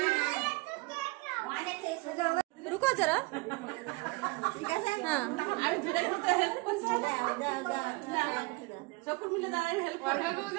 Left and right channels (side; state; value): left; quieter; 25.4 dB